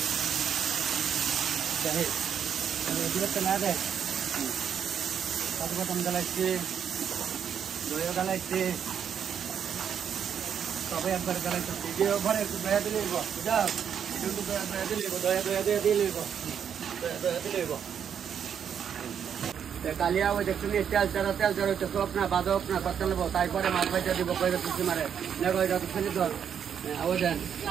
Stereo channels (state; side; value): quieter; left; 8.1 dB